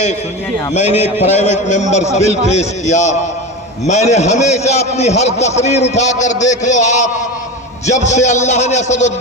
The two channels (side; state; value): both; normal; correlation 0.25